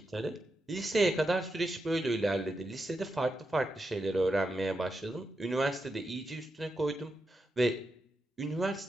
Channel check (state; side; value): normal; both; correlation 0.86